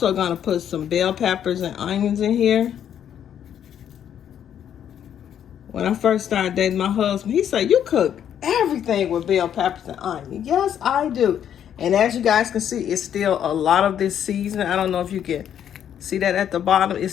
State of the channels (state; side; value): quieter; right; 9.5 dB